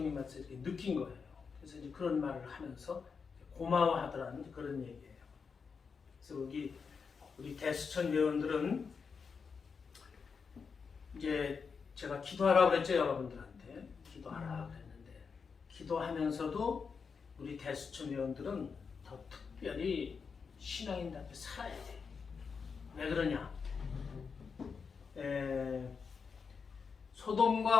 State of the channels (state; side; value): quieter; right; 5.6 dB